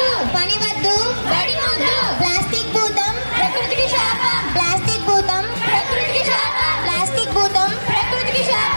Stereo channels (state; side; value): inverted; both; correlation -1.00